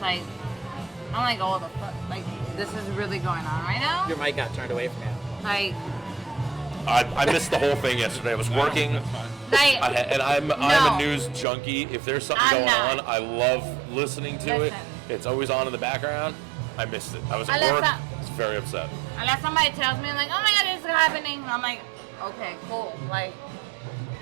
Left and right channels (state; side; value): drops out; left; at 11.5 s